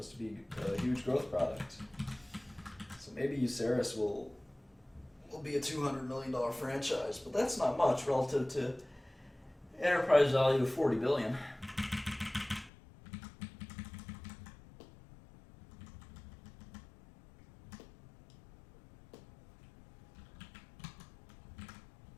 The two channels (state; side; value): drops out; right; at 12.7 s